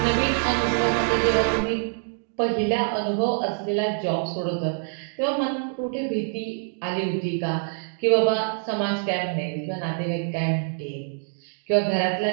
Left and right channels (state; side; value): silent; left; 62 dB below the other